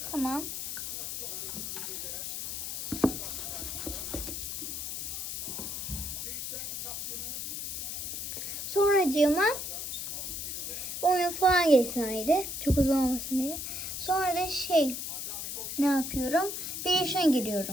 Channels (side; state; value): left; noise; hiss, 5 dB below the sound